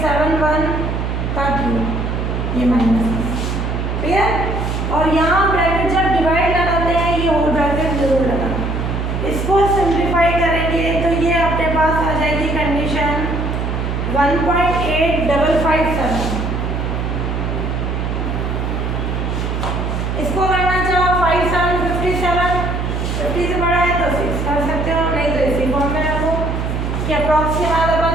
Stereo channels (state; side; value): noise; right; hum, 2 dB below the sound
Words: का क्यूब, ये माइनस। क्लियर? और यहाँ ब्रैकेट जब डिवाइड लगाते हैं ये होल ब्रैकेट जरूर लगाना। इसको सिंप्लीफाई करेंगे तो ये अपने पास आ जाएगी कंडीशन 1.8557। इसको करना चाहो 5757, 50 से बड़ा है तो 6 कर सकते हो, नहीं तो इसी फॉर्म में रखो कि अप्रॉक्सीमेट अपन